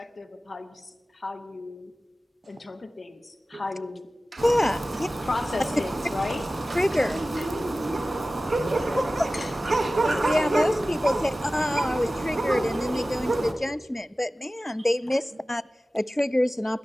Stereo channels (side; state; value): both; normal; correlation 0.96